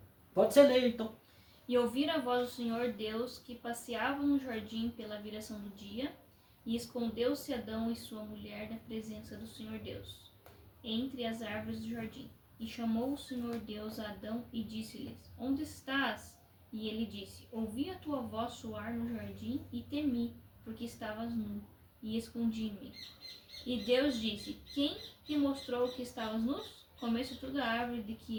Pode ser leia então. E ouviram a voz do Senhor Deus, que passeava no jardim pela viração do dia, e escondeu-se Adão e sua mulher da presença do Senhor Deus, entre as árvores do jardim. E chamou o Senhor Deus a Adão e disse-lhes: Onde estás? E ele disse: Ouvi a tua voz soar no jardim e temi, porque estavas nu, e escondi-me. E Deus disse: Quem te mostrou que estavas nus? Comeste tu da árvore de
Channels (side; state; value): both; identical; correlation 1.00